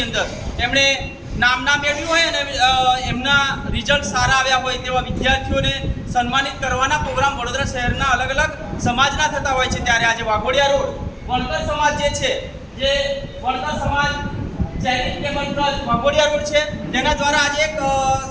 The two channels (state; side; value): identical; both; correlation 1.00